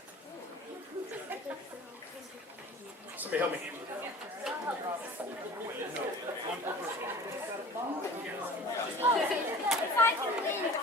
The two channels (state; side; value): normal; both; correlation 0.42